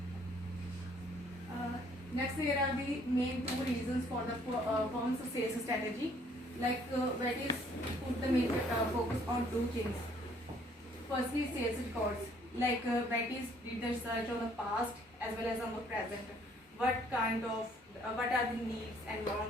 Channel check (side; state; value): both; normal; correlation 0.62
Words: Next, there are the main two reasons for the firm's sales strategy. Like Betty's put the main focus on two things. Firstly, sales records. Like Betty's did the research on the past as well as on the present. What are the needs and